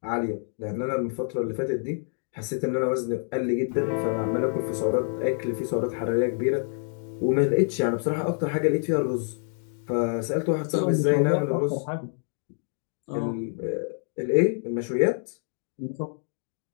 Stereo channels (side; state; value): right; silent; 60 dB below the other